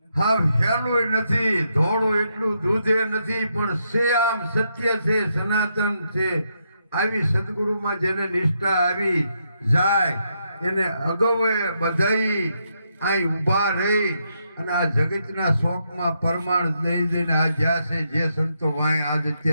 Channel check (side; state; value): both; inverted; correlation -0.80